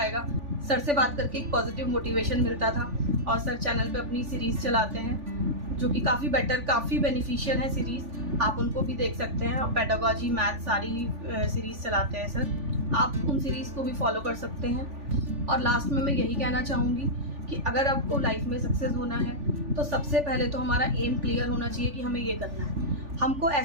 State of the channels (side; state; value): left; late; 3.4 ms